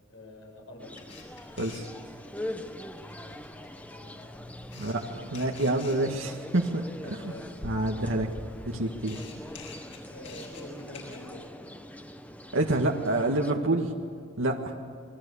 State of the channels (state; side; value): normal; both; correlation 0.29